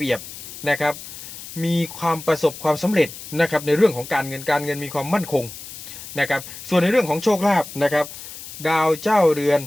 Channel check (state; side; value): noise; left; hiss, 13 dB below the sound